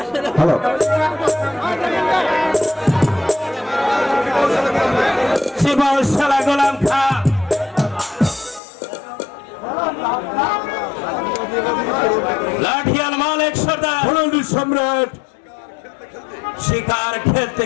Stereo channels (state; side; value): drops out; right; at 8.6 s